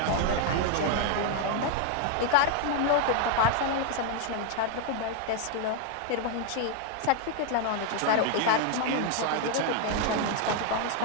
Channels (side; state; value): both; different; correlation 0.00